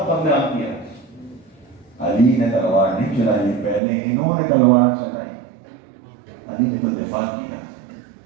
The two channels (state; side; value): drops out; left; at 3.8 s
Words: کو قتل عام کیا. علی نے تلوار نہیں چلائی، پہلے انہوں نے تلوار چلائی. علی نے تو دفاع کیا،